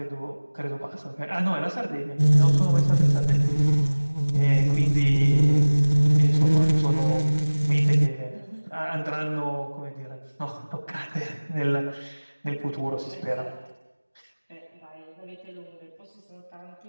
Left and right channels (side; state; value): both; inverted; correlation -1.00